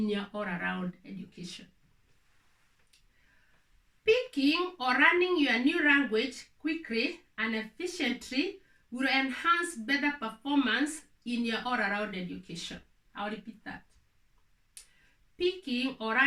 your all-around education. Speaking or running your new language quickly and efficiently will enhance better performance in your all-around education. I'll repeat that. Speaking or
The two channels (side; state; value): both; identical; correlation 1.00